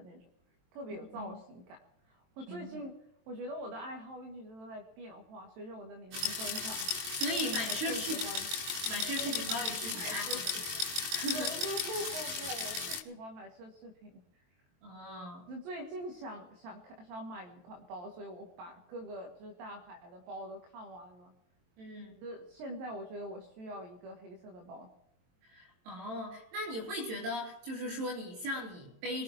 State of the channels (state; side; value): late; left; 23 ms